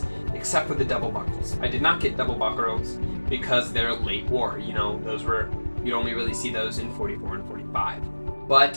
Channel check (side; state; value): both; inverted; correlation -1.00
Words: except for the double buckles. I did not get double buckles because they're late war. You know, you'd only really see those in 44 and 45.